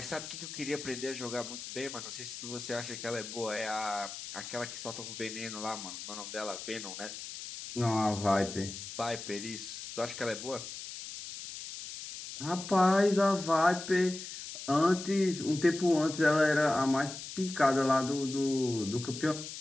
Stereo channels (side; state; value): left; noise; hiss, 10 dB below the sound